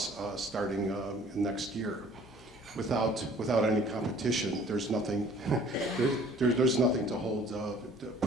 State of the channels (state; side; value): normal; both; correlation 0.53